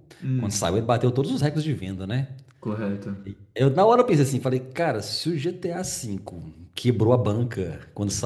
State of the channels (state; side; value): identical; both; correlation 1.00